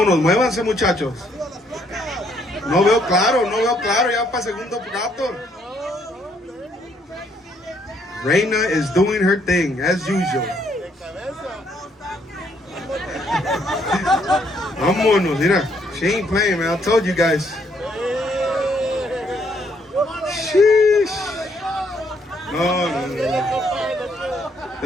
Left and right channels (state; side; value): normal; both; correlation 0.70